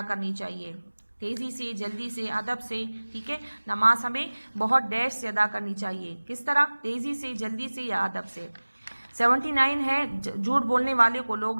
کرنی چاہیے، تیزی سے، جلدی سے، ادب سے. ٹھیک ہے. نماز ہمیں بہت ڈیش سے ادا کرنی چاہیے. کس طرح؟ تیزی سے، جلدی سے یا ادب سے. 79 ہے جھوٹ بولنے والے کو لوگ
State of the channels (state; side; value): inverted; both; correlation -1.00